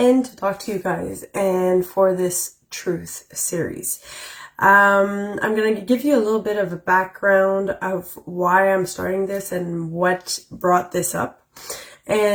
to talk to you guys and for this truth series. I'm going to give you a little bit of a background of why I'm starting this and what brought this up.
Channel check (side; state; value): both; identical; correlation 1.00